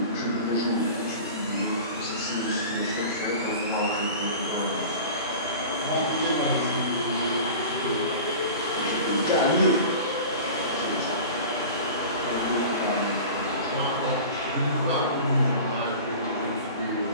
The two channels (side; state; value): both; inverted; correlation -0.37